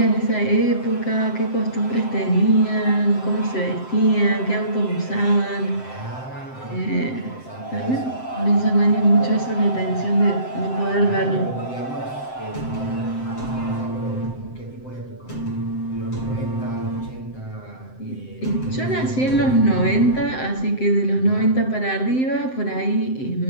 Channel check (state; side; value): late; right; 7.7 ms